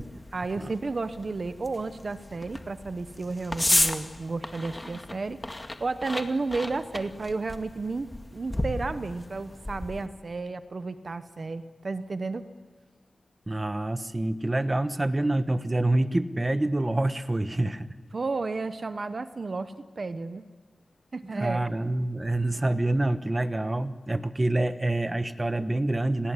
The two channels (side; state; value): both; normal; correlation 0.98